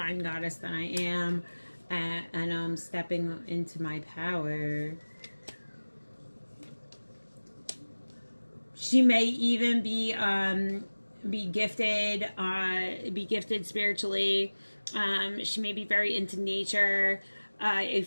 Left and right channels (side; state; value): both; inverted; correlation -1.00